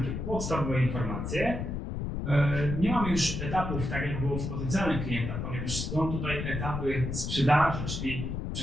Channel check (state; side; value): noise; left; rumble, 4 dB below the sound